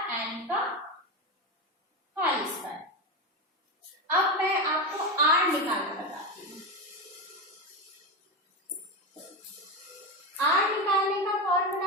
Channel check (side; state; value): both; normal; correlation 0.16